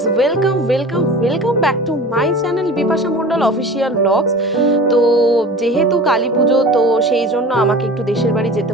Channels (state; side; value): normal; both; correlation 0.38